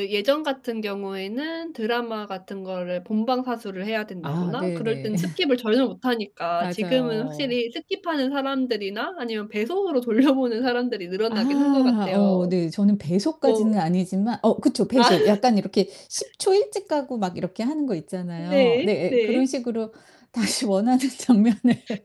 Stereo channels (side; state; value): both; identical; correlation 1.00